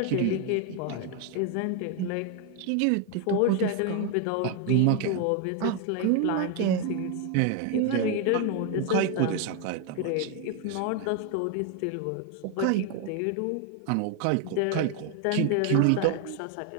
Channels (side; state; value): both; different; correlation 0.01